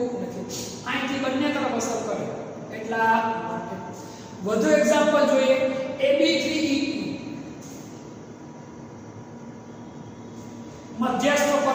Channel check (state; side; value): identical; both; correlation 1.00